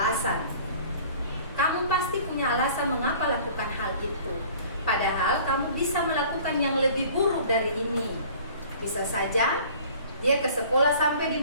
Kamu pasti punya alasan mengapa lakukan hal itu. Padahal kamu bisa melakukan yang lebih buruk dari ini. Bisa saja dia ke sekolah sampai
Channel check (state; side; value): inverted; both; correlation -0.49